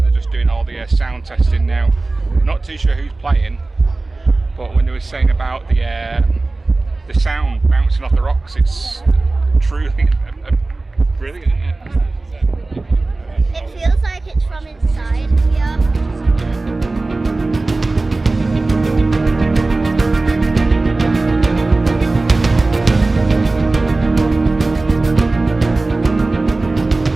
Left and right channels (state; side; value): quieter; left; 3.2 dB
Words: they're just doing all the sound testing now. Not too sure who's playing, but when they were saying about the sound bouncing off the rocks, it's truly brilliant, isn't it? It feels like it's from inside here.